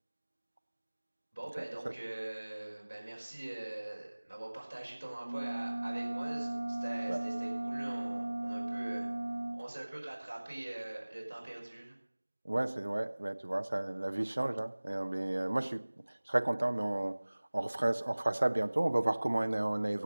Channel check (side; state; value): both; inverted; correlation -1.00